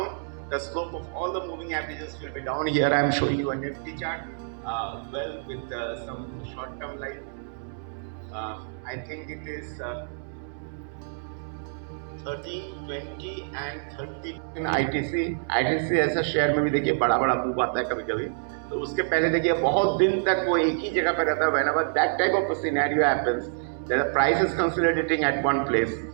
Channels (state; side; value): silent; left; 60 dB below the other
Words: the slope of all the moving averages will be down. Here I am showing you a Nifty chart, with some short-term line. I think it is 13, 20 and 30 in ITC ऐसा share में भी देखिए बड़ा move आता है कभी कभी, तो उसके पहले देखिए बहुत दिन तक वो एक ही जगह पे रहता है. Whenever that type of a scenario happens, that the price is consolidating at one place,